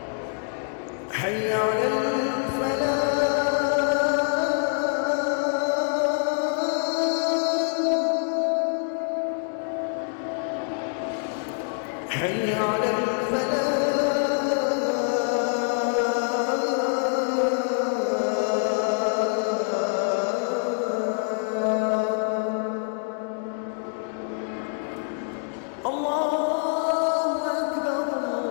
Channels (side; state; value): right; silent; 61 dB below the other